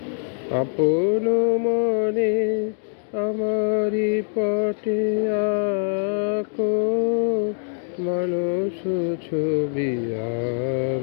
আপন মনে আমারি পটে আঁকো মানুষ ছবি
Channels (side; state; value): right; silent; digital silence